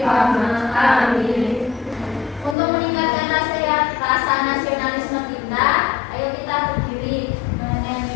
Amin. Untuk meningkatkan rasa nasionalisme kita, ayo kita berdiri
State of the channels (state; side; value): drops out; right; at 2.6 s